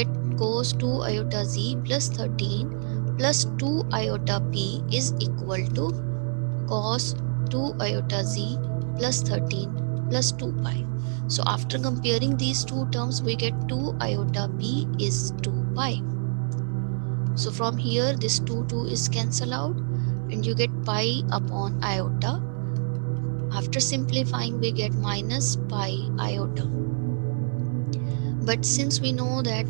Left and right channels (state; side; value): silent; left; 61 dB below the other